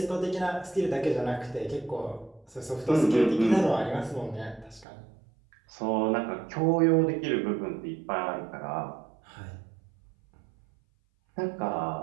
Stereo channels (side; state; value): left; drops out; at 4.9 s